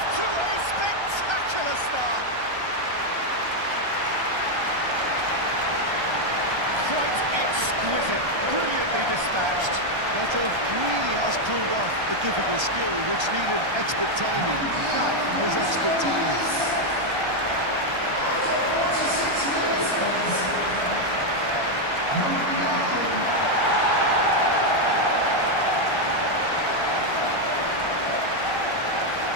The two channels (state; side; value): late; left; 1.3 ms